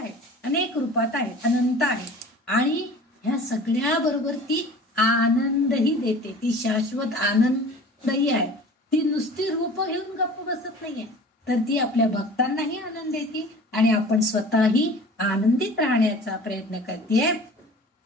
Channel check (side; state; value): both; normal; correlation 0.42